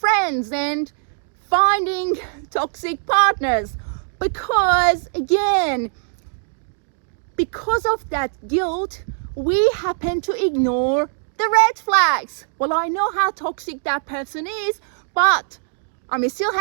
and finding toxic partners. Because again, because of that guilt, we happen to ignore the red flags. Well, I know how toxic that person is, but I'm still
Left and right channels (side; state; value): left; silent; digital silence